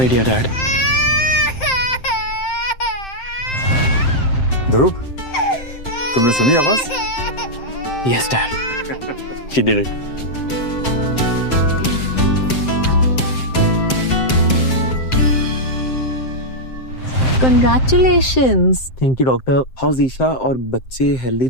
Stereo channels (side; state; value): right; late; 7.7 ms